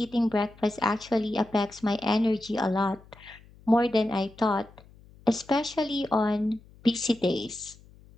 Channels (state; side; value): noise; left; hum, 25 dB below the sound